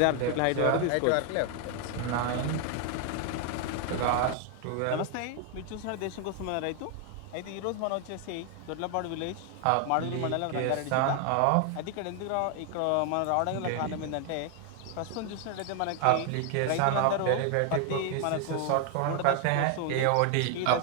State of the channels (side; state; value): both; different; correlation 0.00